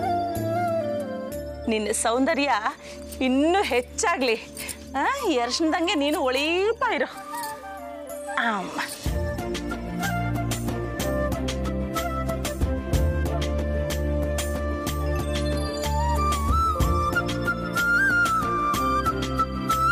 ನಿನ್ನ ಸೌಂದರ್ಯ ಇನ್ನೂ ಹೆಚ್ಚಾಗ್ಲಿ. ಈ ಅರ್ಶನದಂಗೆ ನೀನು ಒಳೀಪ ಇರು. ಅಮ್ಮ,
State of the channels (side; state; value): both; identical; correlation 1.00